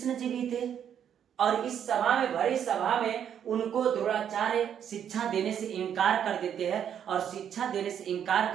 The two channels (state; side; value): quieter; left; 9.0 dB